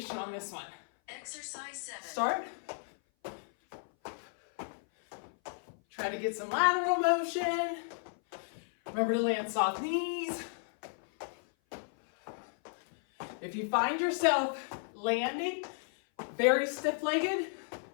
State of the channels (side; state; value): right; silent; 55 dB below the other